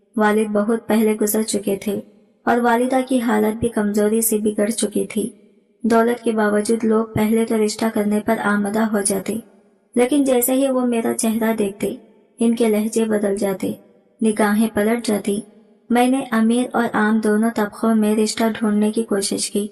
वालिद बहुत पहले गुजर चुके थे और वालिदा की हालत भी कमजोरी से बिगड़ चुकी थी। दौलत के बावजूद लोग पहले तो रिश्ता करने पर आमदा हो जाते, लेकिन जैसे ही वो मेरा चेहरा देखते इनके लहजे बदल जाते, निगाहें पलट जाती। मैंने अमीर और आम दोनों तबकों में रिश्ता ढूंढने की कोशिश की,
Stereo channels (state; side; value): identical; both; correlation 1.00